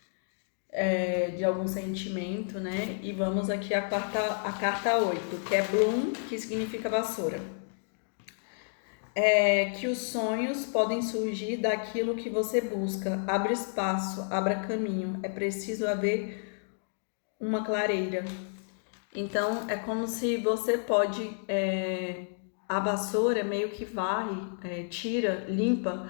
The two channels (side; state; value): right; silent; digital silence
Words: De algum sentimento, né? E vamos aqui a carta 8, que é Bloom, que significa vassoura. Que os sonhos podem surgir daquilo que você busca. Abra espaço, abra caminho. É preciso haver uma clareira. Então, é como se você pode... a vassoura meio que varre, tira, limpa